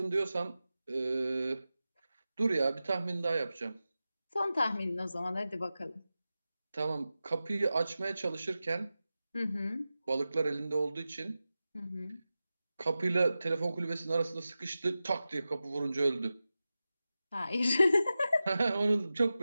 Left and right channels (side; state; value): both; inverted; correlation -0.94